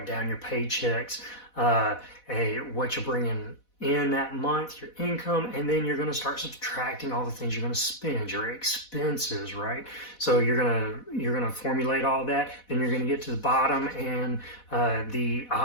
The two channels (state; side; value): late; right; 4.1 ms